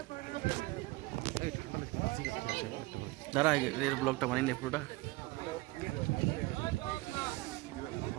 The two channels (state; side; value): quieter; left; 21.4 dB